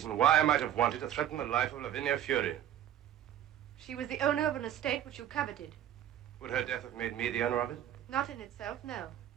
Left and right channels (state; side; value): quieter; left; 11.1 dB